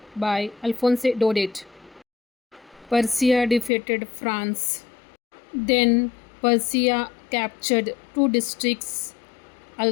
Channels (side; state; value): right; drops out; at 3.7 s